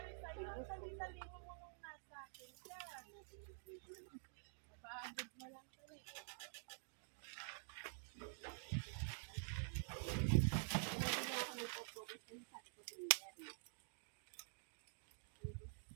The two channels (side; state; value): left; silent; digital silence